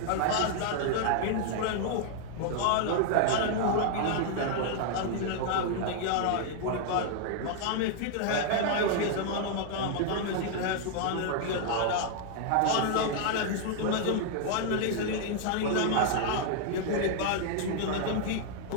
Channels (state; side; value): different; both; correlation 0.00